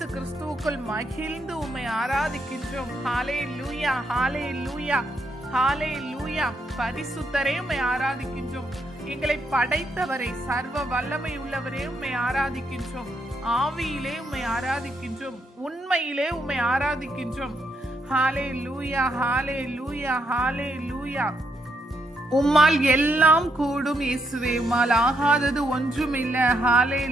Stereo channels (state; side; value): normal; both; correlation 0.78